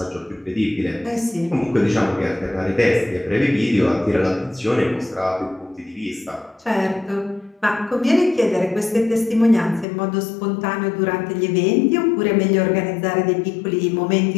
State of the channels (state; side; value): drops out; right; at 9.9 s